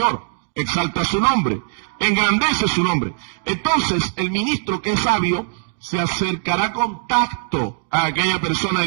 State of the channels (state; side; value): silent; left; digital silence